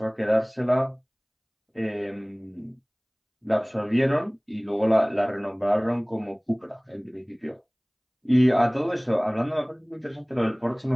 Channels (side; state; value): both; identical; correlation 1.00